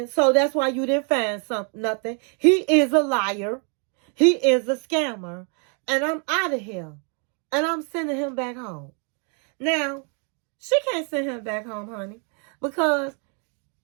so that's why you didn't find nothing. He is a liar. He is a scammer. And I'm out of here. And I'm sending him back home. Now, she can't send him back home, honey, because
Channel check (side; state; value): left; quieter; 39.5 dB